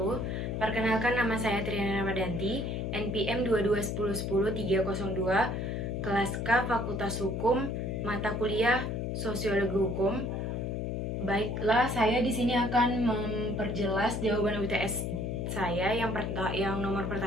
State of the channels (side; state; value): left; noise; hum, 2 dB below the sound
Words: Perkenalkan, nama saya Triana Ramadanti, NPM 2210100302, kelas K Fakultas Hukum, mata kuliah Sosiologi Hukum. Baiklah, saya di sini akan memperjelas jawaban UTS saya yang nomor